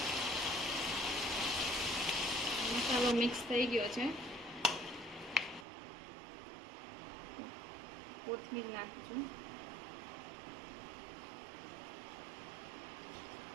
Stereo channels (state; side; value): drops out; left; at 5.7 s